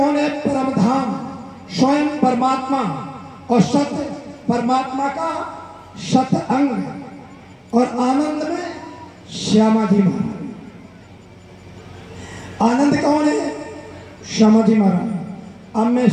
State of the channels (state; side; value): identical; both; correlation 1.00